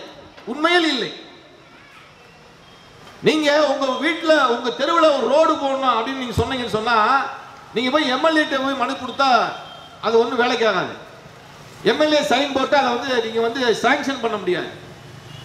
உண்மையில் இல்லை. நீங்க உங்க வீட்டுல உங்க தெருவில் ஒரு ரோடு போடணும் அப்படின்னு நீங்க சொன்னீங்கன்னு சொன்னா, நீங்க போய் எம்எல்ஏ போய் மனு கொடுத்தா அது ஒன்றும் வேலைக்கு ஆகாது. எம்எல்ஏ சைன் போட்டு அதை வந்து நீங்க வந்து சாங்ஷன் பண்ண முடியாது.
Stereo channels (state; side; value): identical; both; correlation 1.00